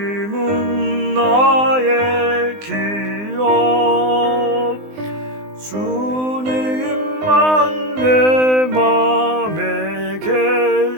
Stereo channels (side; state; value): left; late; 19 ms